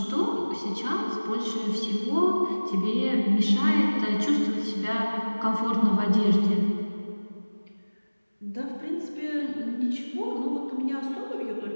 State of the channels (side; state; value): both; inverted; correlation -1.00